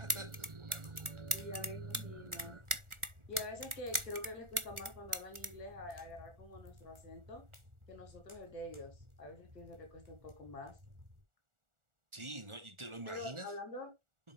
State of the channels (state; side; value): late; left; 1.4 ms